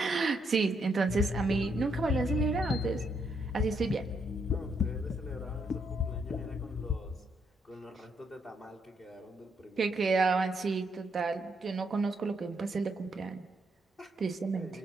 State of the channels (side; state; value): both; normal; correlation 0.76